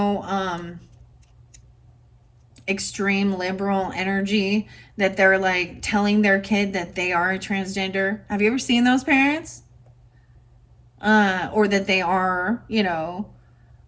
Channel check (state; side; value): identical; both; correlation 1.00